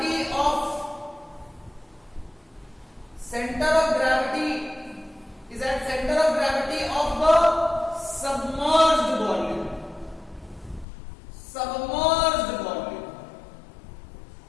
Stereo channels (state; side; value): drops out; right; at 10.9 s